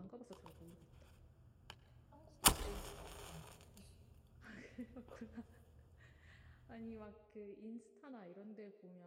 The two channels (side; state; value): both; identical; correlation 1.00